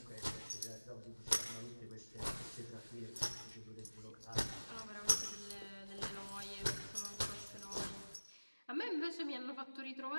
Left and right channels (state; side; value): inverted; both; correlation -1.00